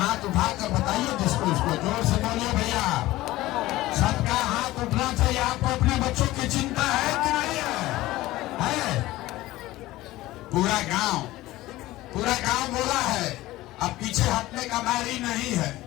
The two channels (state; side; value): quieter; right; 17.4 dB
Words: उठाकर बताइए जिसको, उसको जोर से बोलिए भैया। सबका हाथ उठना चाहिए। आपको अपने बच्चों की चिंता है कि नहीं है? पूरा गांव बोला है। अब पीछे हटने का बारी नहीं है।